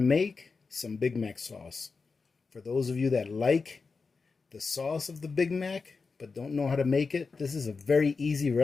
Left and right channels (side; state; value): right; quieter; 4.6 dB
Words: some Big Mac sauce. For those of you that like the sauce of the Big Mac but don't know how to make it, this is a very easy